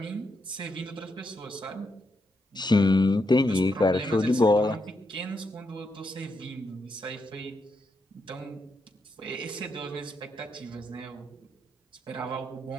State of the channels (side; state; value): both; normal; correlation 0.81